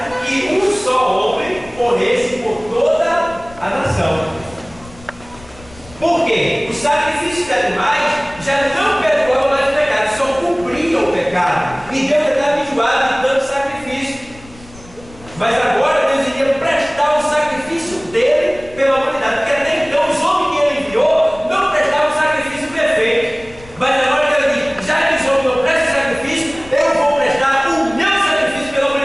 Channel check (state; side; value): noise; left; rumble, 21 dB below the sound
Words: que um só homem morresse por toda a nação. Por quê? Os sacrifícios de animais já não perdoavam mais o pecado, só cumpriam o pecado. E Deus estava enjoado de tanto sacrifício. Mas agora Deus iria prestar o sacrifício dele pela humanidade, porque até então os homens que ele enviou não prestavam sacrifício perfeito. Mas agora Deus diz: já que os homens não prestam sacrifício, eu vou prestar o meu sacrifício pela